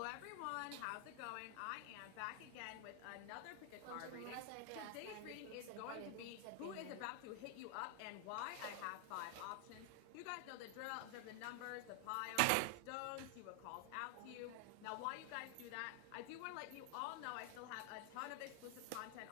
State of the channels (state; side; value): different; both; correlation 0.00